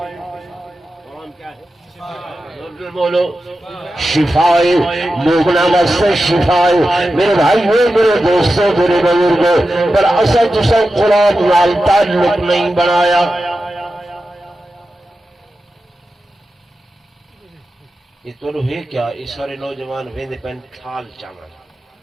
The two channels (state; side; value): normal; both; correlation 0.92